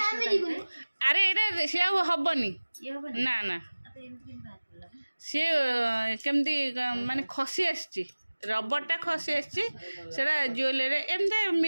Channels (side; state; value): both; inverted; correlation -1.00